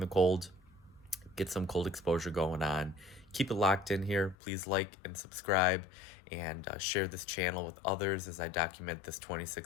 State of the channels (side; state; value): right; drops out; at 4.4 s